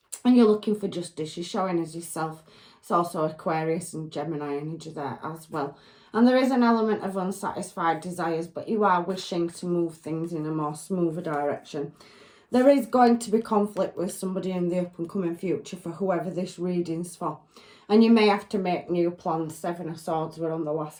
And you're looking for justice. You're showing as yourself. It's also Aquarius and Gemini energy there as well. And there is an element of unsatisfied desires, but you are wishing to move things in a more smoother direction. There is going to be conflict with somebody in the up and coming future for whoever this reading's for. And you may have to make new plans. Seven of Swords were on the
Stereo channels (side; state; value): both; identical; correlation 1.00